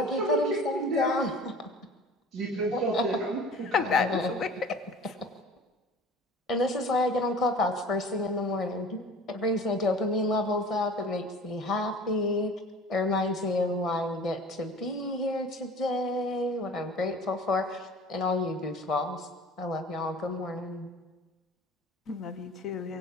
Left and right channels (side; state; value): both; normal; correlation 0.42